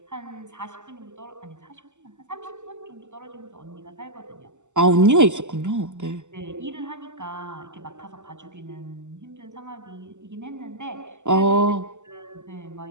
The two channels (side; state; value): left; late; 0.84 ms